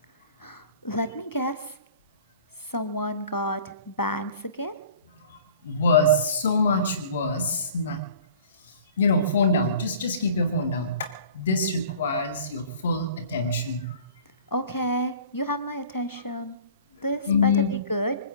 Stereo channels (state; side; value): inverted; both; correlation -0.46